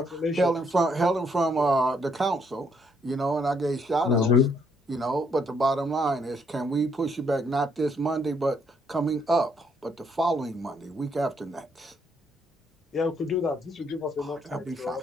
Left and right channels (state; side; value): normal; both; correlation 0.71